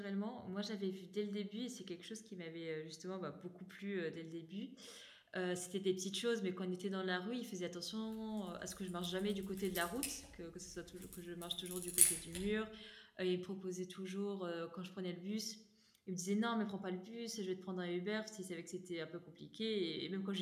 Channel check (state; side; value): identical; both; correlation 1.00